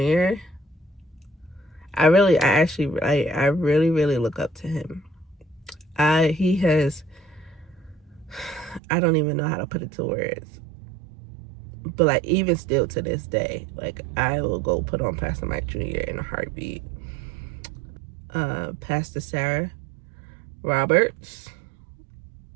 I really look up to him. He has, I don't even know how to put it to words, but like even still to this day, like I will go put on Pastor Mike Jr. in a heartbeat. Pastor Sarah Roberts,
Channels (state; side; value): drops out; left; at 8.8 s